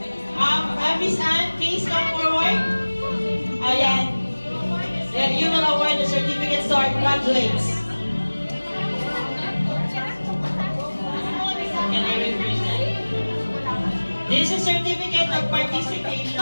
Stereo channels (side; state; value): both; inverted; correlation -1.00